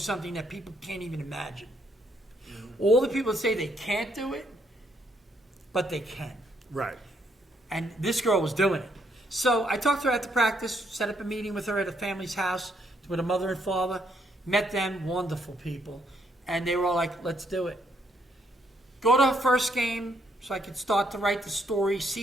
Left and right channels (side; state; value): both; normal; correlation 0.72